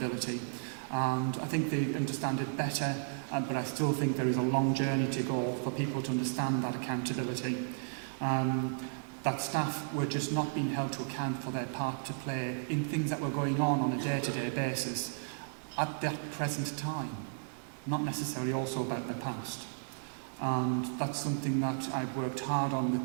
And I think they understand it better, but I still think there is a long journey to go for people to understand that accountability. That staff were just not being held to account for their part to play in things that were going on a day-to-day basis at that present time. Not necessarily also about the past. And that's something that I've worked hard on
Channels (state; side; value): silent; left; digital silence